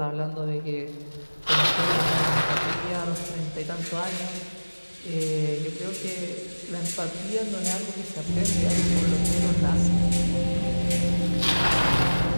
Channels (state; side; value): inverted; both; correlation -1.00